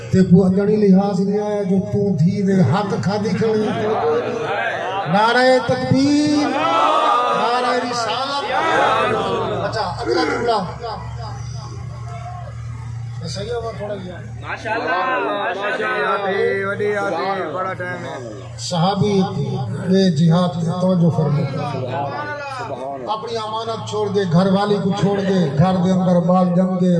تے کو اجڑی لحاظ نہیں آیا جو تو دھی دے حق کھا دی کھڑی نعرہ تکبیر نعرہ رسالت اچھا اگلا جملہ صحیح ہوا تھوڑا گیا ماشاءاللہ وڈی آتی بڑا ٹائم ہے صحابی یہ جہاد کی توجہ فرمائے اپنی امانت چھوڑ دے گھر والی کو چھوڑ دے گھر دے اندر بال جم گے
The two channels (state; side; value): identical; both; correlation 1.00